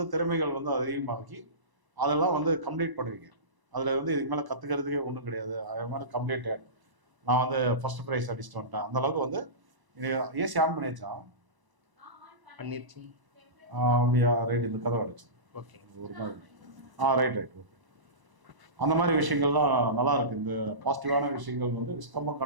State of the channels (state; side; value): late; left; 1.0 ms